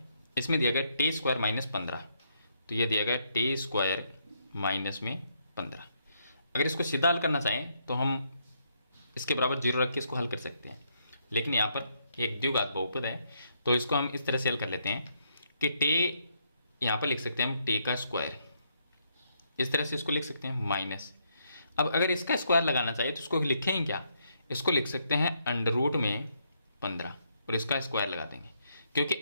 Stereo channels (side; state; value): both; inverted; correlation -0.75